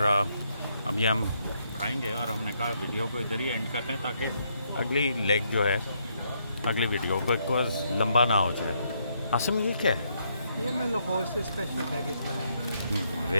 अब ये हम खाएंगे, और हमने कहा वीडियो को इधर ही एंड करते हैं ताकि अगली लेग जो है अगली वीडियो को बिकॉज लंबा ना हो जाए। आसम ये क्या है? ये मैं लाहौर से स्पेशल बैगेज लाया।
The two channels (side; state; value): both; inverted; correlation -0.74